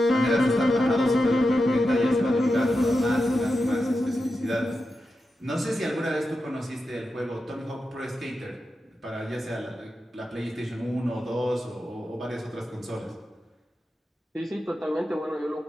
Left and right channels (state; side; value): normal; both; correlation 0.90